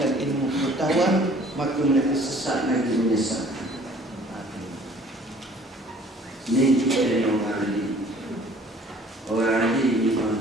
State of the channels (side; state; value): both; normal; correlation 0.54